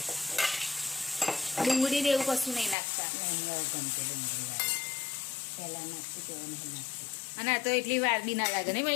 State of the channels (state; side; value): drops out; right; at 2.8 s